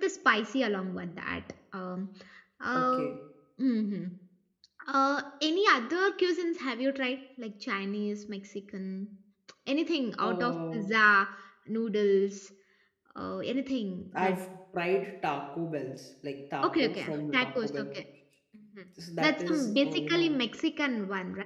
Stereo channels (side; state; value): both; identical; correlation 1.00